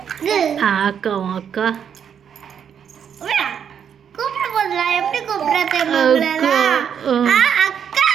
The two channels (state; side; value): quieter; left; 8.0 dB